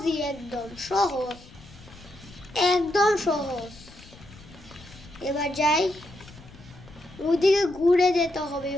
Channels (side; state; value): left; noise; rumble, 21 dB below the sound